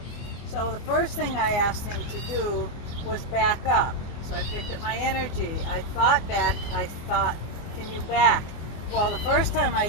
So the first thing I asked him to do was back up. So I picked up my energy. I thought back. I thought, can you back? Well, the first time I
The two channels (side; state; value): right; late; 24 ms